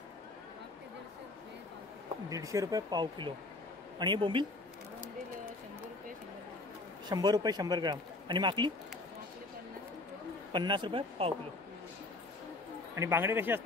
150 रुपये पाव किलो. आणि हे बोंबील 100 रुपये 100 ग्राम. आणि माकली 50 रुपये पाव किलो. आणि बांगडे कसे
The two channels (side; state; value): right; quieter; 3.0 dB